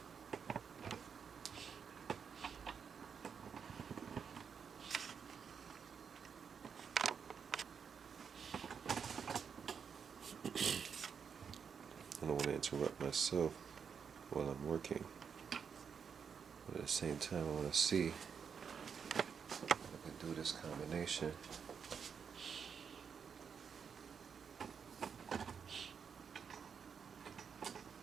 I don't want to interrupt myself while I'm working, but at the same time I want to see if I can do this combination.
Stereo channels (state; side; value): quieter; left; 6.7 dB